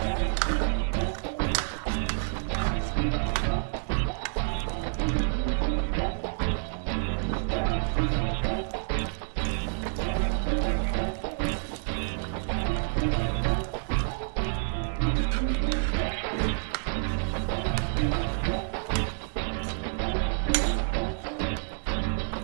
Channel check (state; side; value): silent; left; digital silence